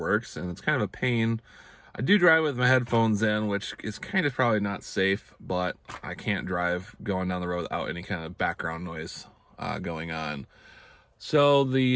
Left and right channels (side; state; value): both; identical; correlation 1.00